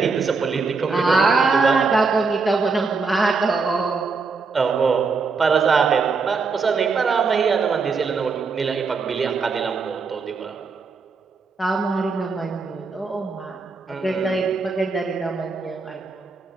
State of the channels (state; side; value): quieter; left; 4.6 dB